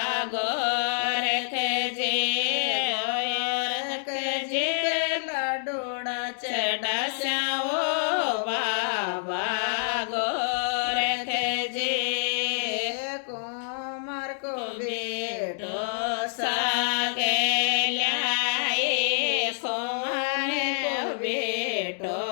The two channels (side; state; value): right; silent; digital silence